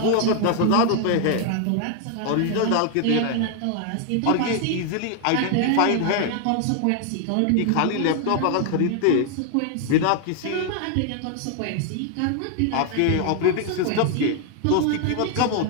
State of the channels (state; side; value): different; both; correlation 0.00